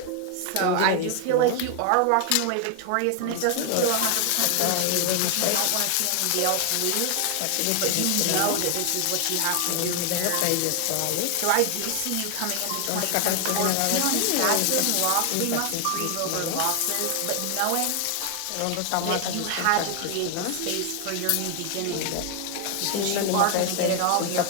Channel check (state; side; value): different; both; correlation 0.00